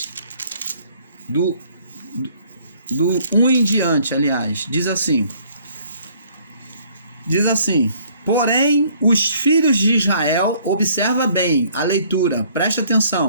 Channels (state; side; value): inverted; both; correlation -0.60